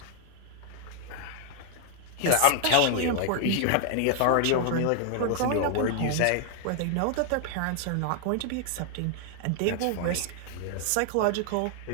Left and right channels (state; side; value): different; both; correlation 0.00